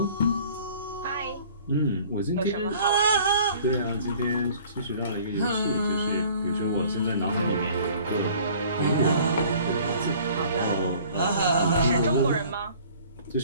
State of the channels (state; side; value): inverted; both; correlation -0.52